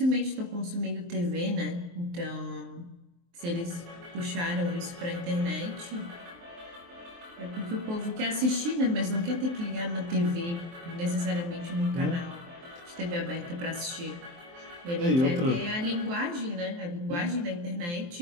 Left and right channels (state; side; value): late; left; 23 ms